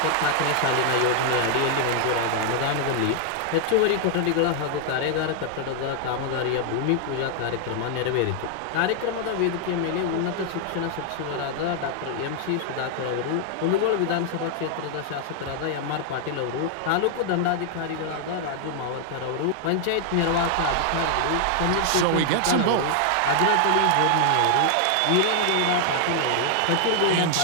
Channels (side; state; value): both; different; correlation 0.00